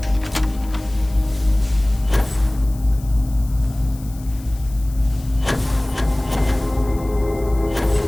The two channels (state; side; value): noise; left; hiss, 21 dB below the sound